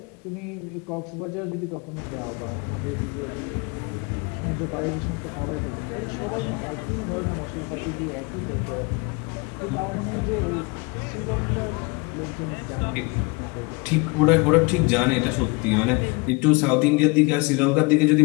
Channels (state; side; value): quieter; right; 28.1 dB